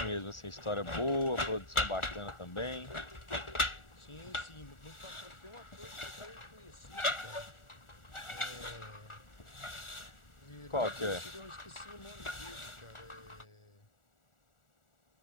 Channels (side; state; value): right; late; 1.4 ms